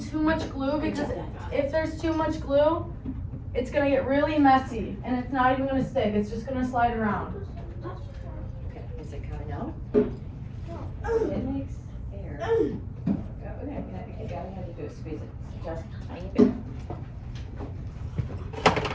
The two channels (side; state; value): both; identical; correlation 1.00